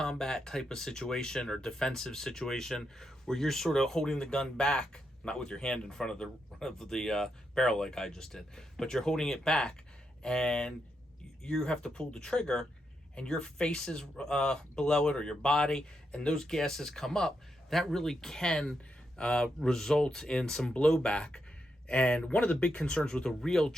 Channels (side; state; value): both; normal; correlation 0.83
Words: type of situation or defensive situation where you're sort of holding the gun back, not with your hand in front of the barrel like I just did, but you're holding it back and you have to pull the trigger and your face is below it or your body and those gases come up, that really can result in some blowback. And one of the big concerns with a real